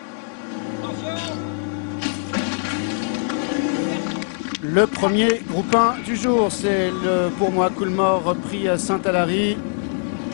Le premier groupe 1 du jour, c'est pour moi Coolmore prix Saint-Alary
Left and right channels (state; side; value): silent; right; digital silence